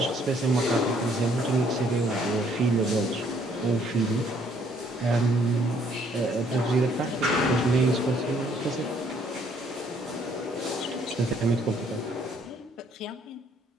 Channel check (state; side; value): normal; both; correlation 0.65